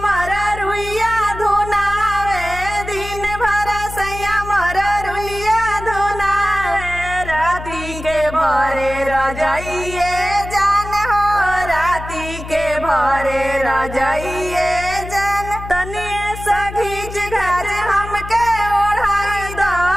मर रुइया धुनावे, दिन भर सैया मर रुइया धुनावे, राती के भरे रजाइए जान हो, राती के भरे रजाइए जान। तनिए सघीच घाच हमके ओढ़ाई दो,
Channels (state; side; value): noise; left; hum, 11 dB below the sound